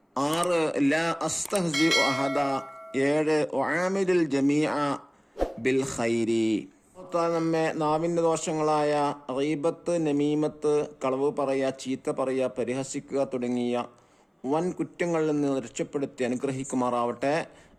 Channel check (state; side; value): identical; both; correlation 1.00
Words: 6 ലാ അസ്തഹ്സിഉ അഹദ. 7 ഉആമിലുൽ ജമീഅ ബിൽ ഖൈരി. നമ്മെ നാവിൻ്റെ ദോഷങ്ങളായ ഗീബത്ത്, നമീമത്ത്, കളവ് പറയുക, ചീത്ത പറയുക, പരിഹസിക്കുക തുടങ്ങിയ വൻ കുറ്റങ്ങളിൽ നിന്ന് രക്ഷപ്പെടുത്തി അനുഗ്രഹിക്കുമാറാവട്ടെ.